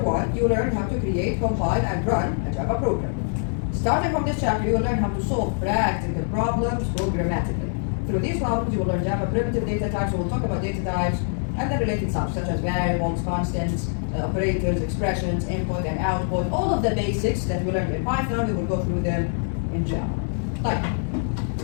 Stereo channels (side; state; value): right; silent; 59 dB below the other